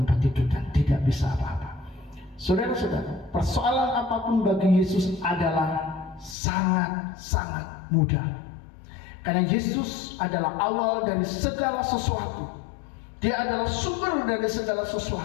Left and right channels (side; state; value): right; drops out; at 6.4 s